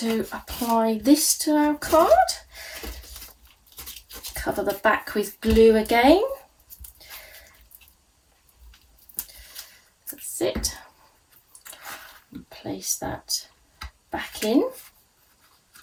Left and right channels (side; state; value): both; identical; correlation 1.00